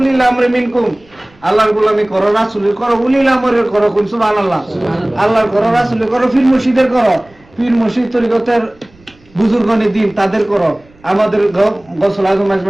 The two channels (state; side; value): noise; right; rumble, 30 dB below the sound